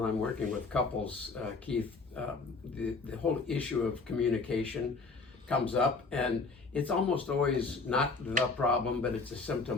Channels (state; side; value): quieter; right; 4.1 dB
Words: I'm working with couples, Keith, the whole issue of communication comes up, and it's almost always not the problem, but it's a